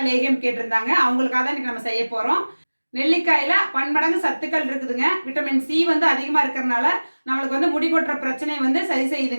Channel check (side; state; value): both; inverted; correlation -1.00